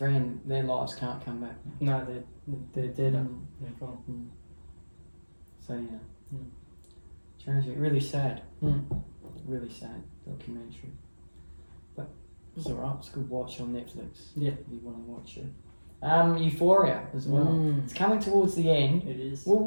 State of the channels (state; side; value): inverted; both; correlation -1.00